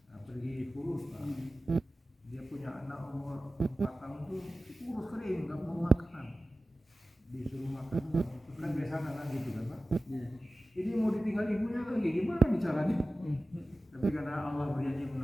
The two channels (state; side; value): normal; both; correlation 0.96